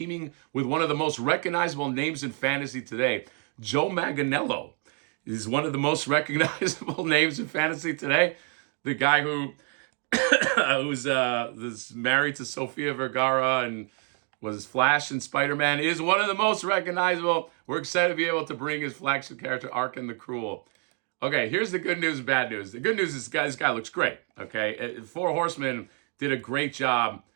with one of the most recognizable names in fantasy today. Joe Manganiello is one of the most recognizable names in fantasy today. The guy who was married to Sofia Vergara and was Flash and Spider-Man is one of the most recognizable. We're excited to be able to bring his flagship character, Arkham the Cruel. Okay, here's the good news and bad news. The good news is this guy looks great, okay? Four Horsemen did a great job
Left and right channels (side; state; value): left; quieter; 34.4 dB